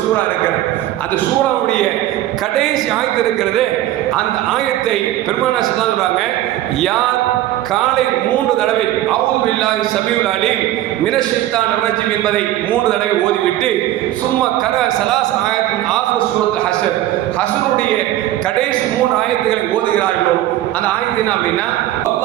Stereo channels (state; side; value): quieter; left; 14.1 dB